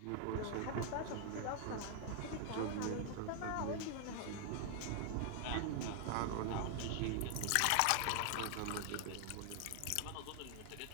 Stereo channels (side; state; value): both; different; correlation 0.00